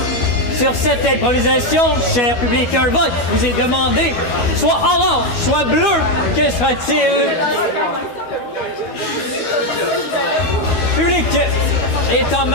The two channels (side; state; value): right; late; 12 ms